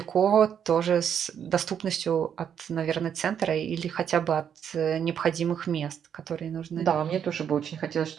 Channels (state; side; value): quieter; left; 8.4 dB